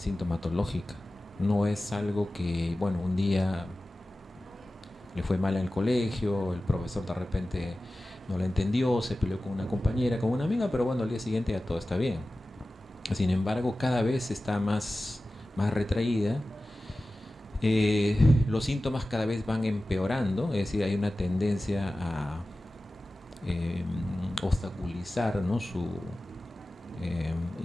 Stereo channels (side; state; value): both; normal; correlation 0.96